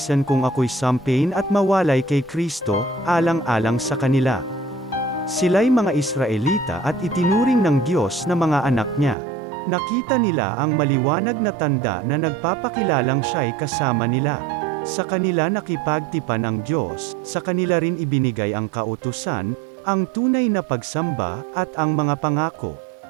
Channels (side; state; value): left; drops out; at 9.2 s